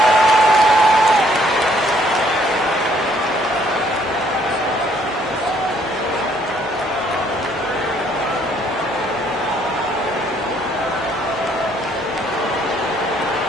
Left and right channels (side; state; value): both; normal; correlation 0.65